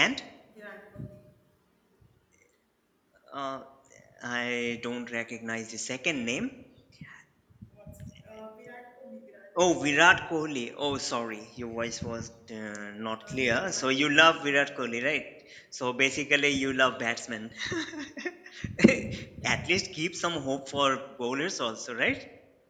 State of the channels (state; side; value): identical; both; correlation 1.00